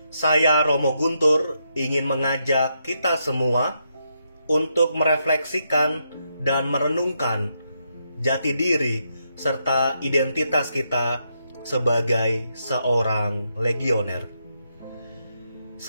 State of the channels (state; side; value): inverted; both; correlation -0.80